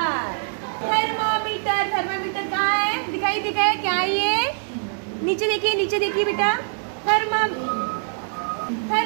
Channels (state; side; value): silent; left; 63 dB below the other